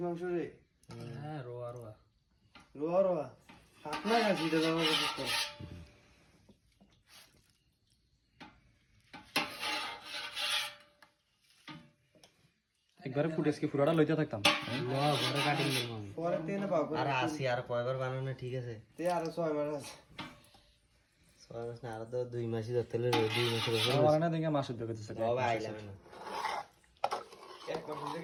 মাংস রে? হ্যাঁ রোয়া রোয়া রোয়া রোয়া আপনার খাসি এটা বাবা কথা একবারে ফুটেজকে পুরোটা লইতে থাকতাম ঘরে কাটিং দেবো আমি পরে তেনে পাবো আর আসি আর কয়বার বানানো ঠিক আছে তে আরো 6 মাস আছে 6 মাস না আর তো 2 মাসই ধরতে হলে 2 মাসের উপর আমার না দেখে মাস উদ্যোগ করতেছে বাবা আইলাম না এক মাস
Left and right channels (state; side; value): identical; both; correlation 1.00